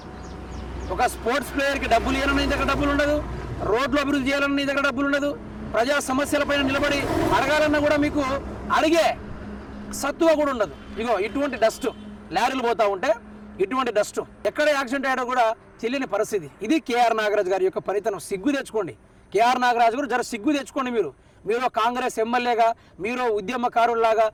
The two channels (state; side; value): identical; both; correlation 1.00